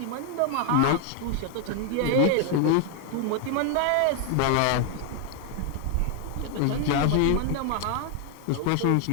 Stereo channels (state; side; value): different; both; correlation 0.00